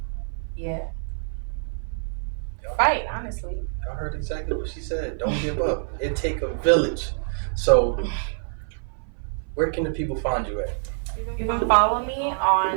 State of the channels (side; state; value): left; silent; 57 dB below the other